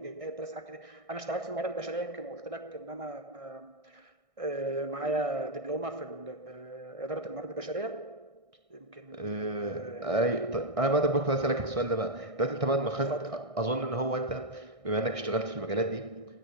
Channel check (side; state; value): left; late; 1.6 ms